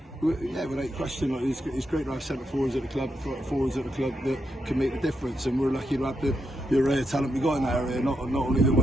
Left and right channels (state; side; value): normal; both; correlation 0.82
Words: Yeah, without question, like, it's great to have centre forwards at the club that can make the difference, and we're lucky to have the array of talent we got in that area. Not only the